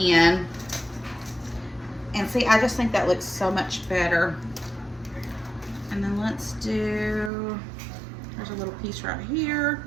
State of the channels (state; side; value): drops out; left; at 7.3 s